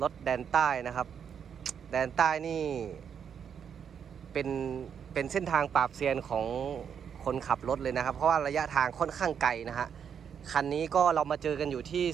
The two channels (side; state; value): left; quieter; 7.7 dB